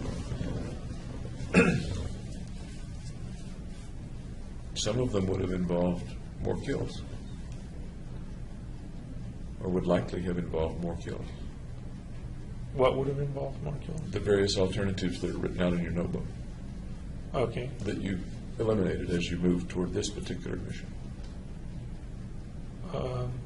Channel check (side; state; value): both; identical; correlation 1.00